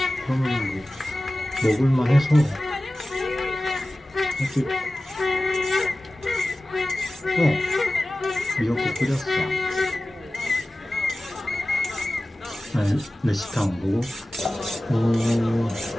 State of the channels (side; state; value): both; normal; correlation 0.96